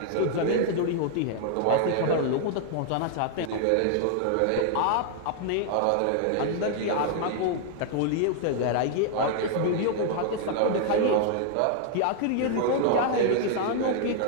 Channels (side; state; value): both; different; correlation 0.00